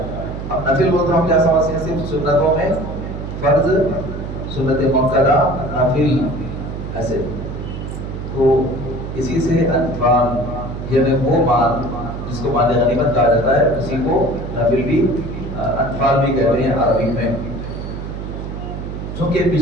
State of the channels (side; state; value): right; noise; hum, 7 dB below the sound